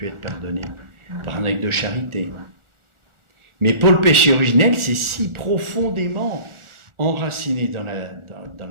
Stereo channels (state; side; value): late; left; 1.4 ms